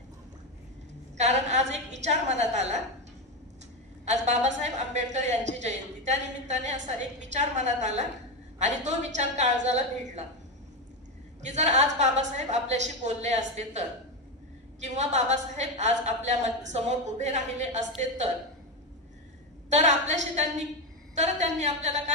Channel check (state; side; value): normal; both; correlation 0.12